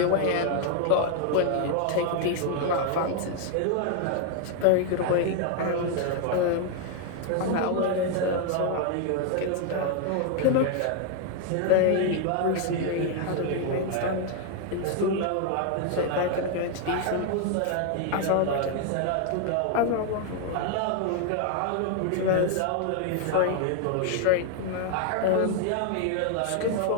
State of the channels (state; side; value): different; both; correlation 0.00